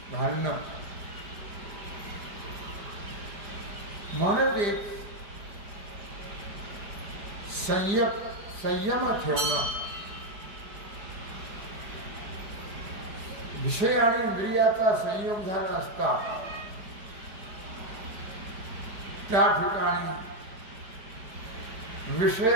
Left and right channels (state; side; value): late; left; 5.0 ms